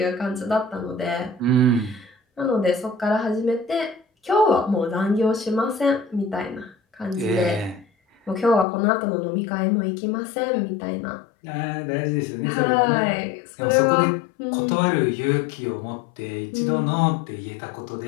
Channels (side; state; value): right; drops out; at 8.7 s